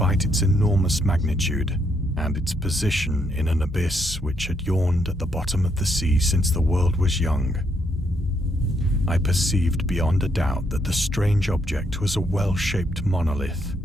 its enormous magnitude and its position in an abyss which had yawned at the bottom of the sea since the world was young, I perceived beyond a doubt that the strange object was a well-shaped monolith,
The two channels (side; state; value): both; normal; correlation 0.75